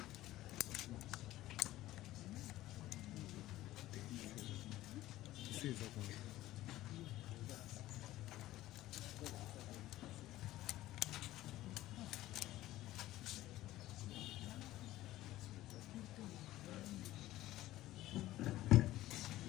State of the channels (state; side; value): quieter; right; 15.6 dB